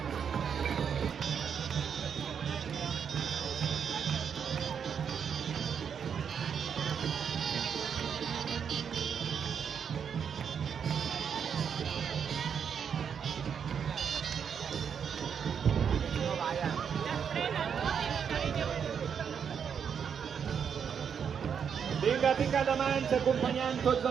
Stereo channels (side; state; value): left; quieter; 7.3 dB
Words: Vinga, pica de mans, acompanyant tots